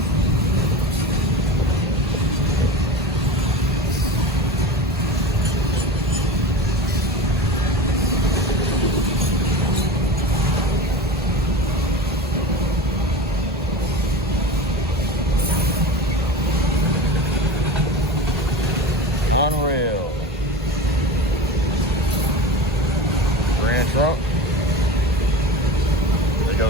Unreal. Grand truck. There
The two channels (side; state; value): both; normal; correlation 0.31